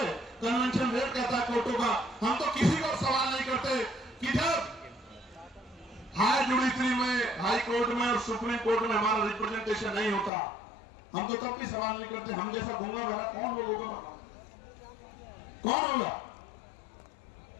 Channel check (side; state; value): right; drops out; at 10.3 s